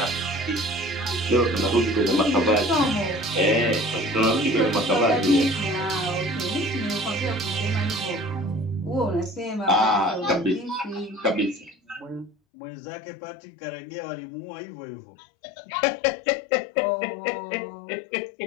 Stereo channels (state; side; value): drops out; right; at 12.4 s